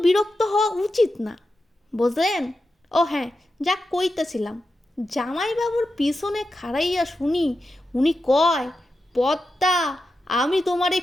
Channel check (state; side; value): normal; both; correlation 0.89